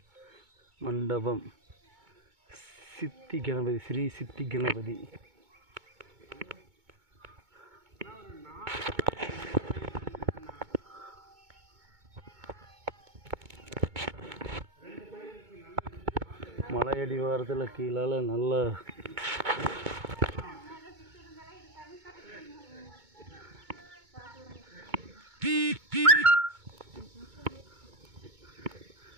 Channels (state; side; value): late; left; 2.2 ms